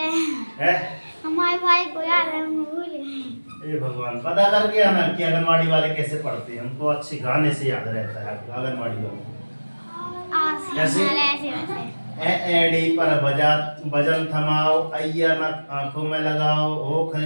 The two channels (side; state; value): both; inverted; correlation -1.00